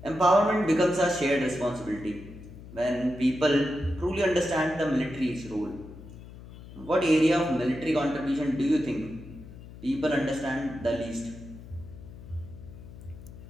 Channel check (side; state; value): left; noise; hum, 16 dB below the sound